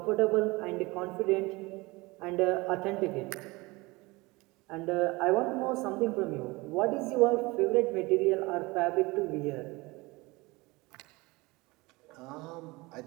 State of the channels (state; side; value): quieter; left; 23.1 dB